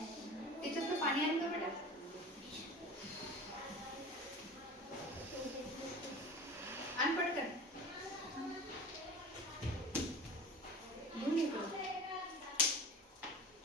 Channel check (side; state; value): both; normal; correlation 0.36